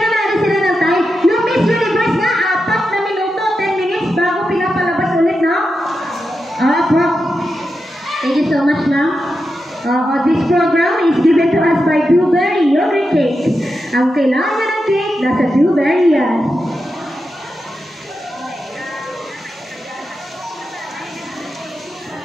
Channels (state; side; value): normal; both; correlation 0.88